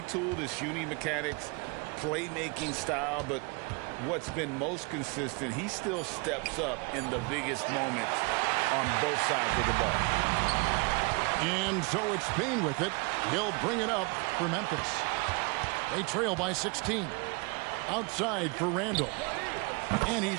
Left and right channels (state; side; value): quieter; left; 30.2 dB